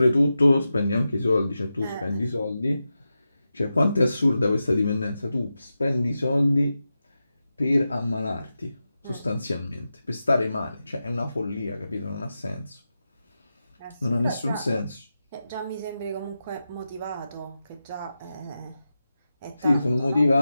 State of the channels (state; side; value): inverted; both; correlation -0.91